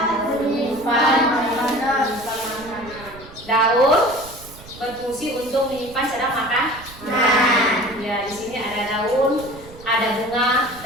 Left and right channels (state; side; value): noise; right; rumble, 19 dB below the sound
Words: daun berfungsi untuk menyimpan sedang makan. Ya, di sini ada daun, ada bunga,